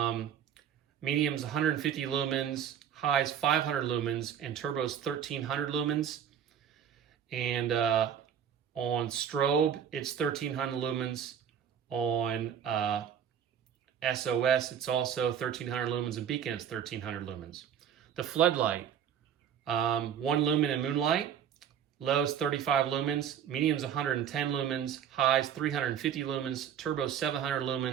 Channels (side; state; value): left; quieter; 8.8 dB